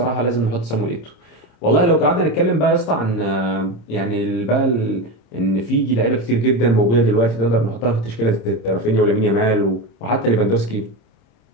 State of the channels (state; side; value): late; right; 26 ms